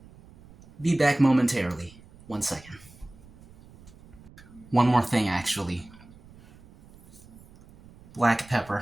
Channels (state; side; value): noise; right; rumble, 23 dB below the sound